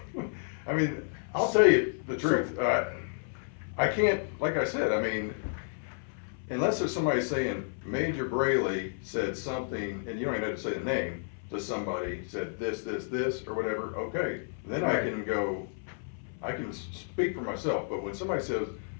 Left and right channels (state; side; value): silent; right; 57 dB below the other